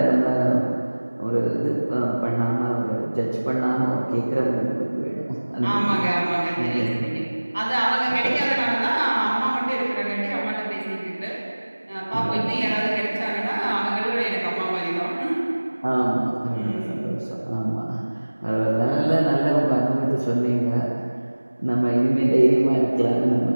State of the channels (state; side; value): inverted; both; correlation -1.00